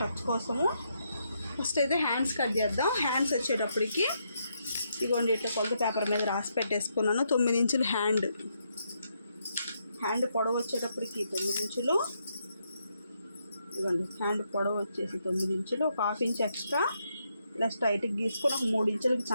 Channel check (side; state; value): both; inverted; correlation -0.78